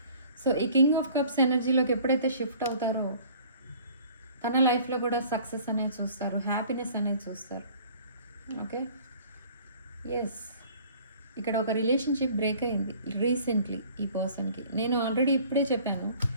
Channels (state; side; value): inverted; both; correlation -0.51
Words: సో ఈ కింగ్ ఆఫ్ కప్స్ ఎనర్జీలోకి ఎప్పుడైతే షిఫ్ట్ అవుతారో తన లైఫ్లో కూడా సక్సెస్ అనేది చూస్తారు, హ్యాపీనెస్ అనేది చూస్తారు. ఓకే, ఎస్, ఇక్కడ ఒక రిలేషన్షిప్ బ్రేక్ అయింది రీసెంట్లీ ఈ పర్సన్కి. నేను ఆల్రెడీ ఇప్పుడే చెప్పాను,